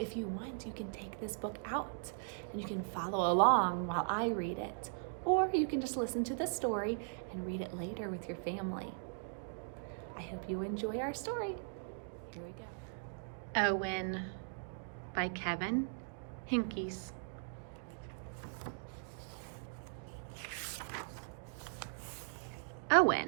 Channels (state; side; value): silent; left; digital silence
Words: you want, you can take this book out and you can follow along while I read it. Or you can just listen to the story and read it later with your family. I hope you enjoy our story. Here we go. Owen by Kevin Henkes.